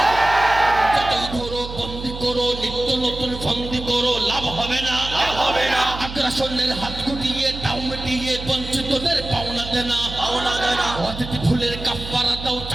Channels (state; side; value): noise; right; hum, 10 dB below the sound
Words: যতই ধরো বন্দি করো, নিত্য নতুন ফন্দি করো, লাভ হবে না, লাভ হবে না। আগ্রাসনের হাত গুটিয়ে, টাউ মিটিয়ে, বঞ্চিতদের পাওনা দেনা, পাওনা দেনা। অতিথি ফুলের কাফারা দাও,